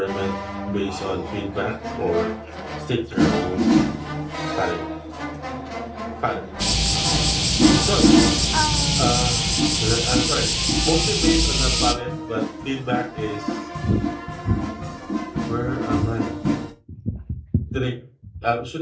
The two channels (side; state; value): both; identical; correlation 1.00